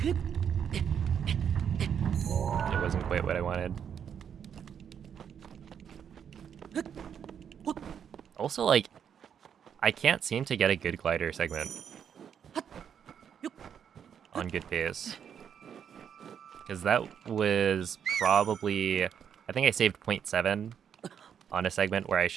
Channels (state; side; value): quieter; left; 8.1 dB